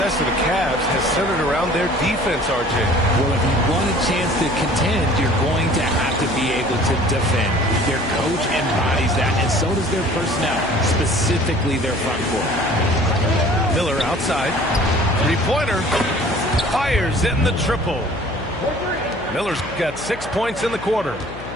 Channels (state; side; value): noise; left; hum, 13 dB below the sound